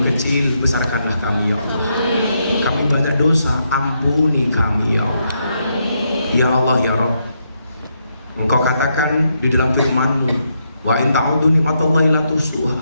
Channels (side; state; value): both; inverted; correlation -0.80